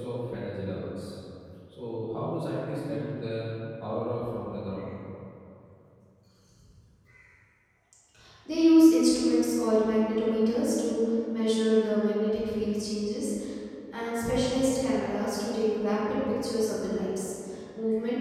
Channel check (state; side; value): identical; both; correlation 1.00